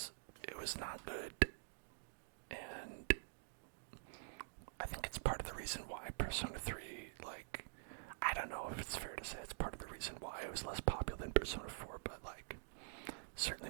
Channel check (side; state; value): left; silent; digital silence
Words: not good, and I think it's part Persona 3, like, I don't know if it's fair to say it's part of the reason why it was less popular than Persona 4, but like,